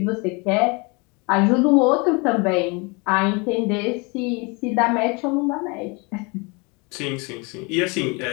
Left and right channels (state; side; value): quieter; right; 29.3 dB